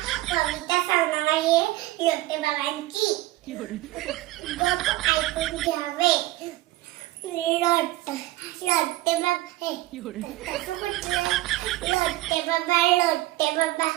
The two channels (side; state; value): left; quieter; 17.7 dB